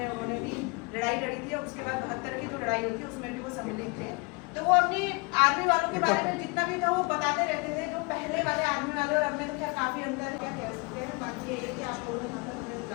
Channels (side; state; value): right; quieter; 29.1 dB